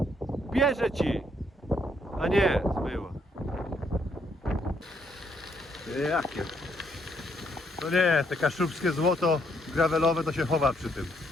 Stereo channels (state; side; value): normal; both; correlation 0.72